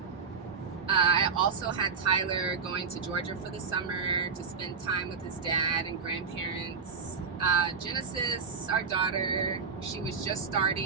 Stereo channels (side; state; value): left; quieter; 5.4 dB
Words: I also had Tyler going to Georgia for the summer to spend time with his dad and grandparents. Genesis, our daughter, she was just